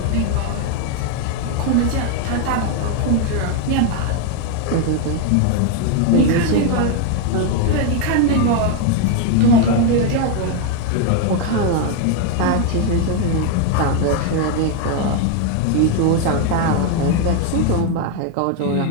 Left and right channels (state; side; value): different; both; correlation 0.01